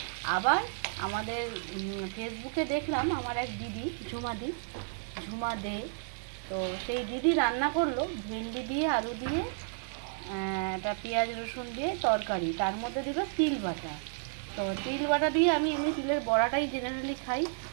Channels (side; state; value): left; silent; digital silence